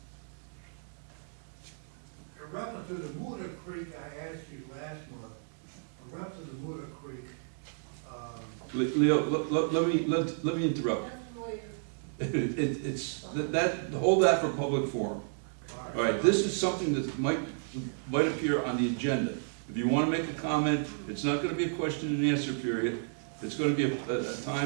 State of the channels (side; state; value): left; silent; digital silence